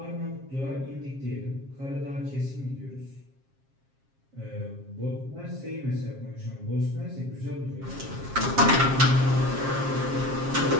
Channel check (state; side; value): late; left; 7.4 ms